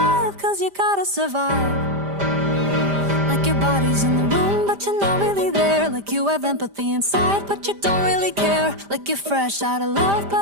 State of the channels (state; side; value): late; left; 5.0 ms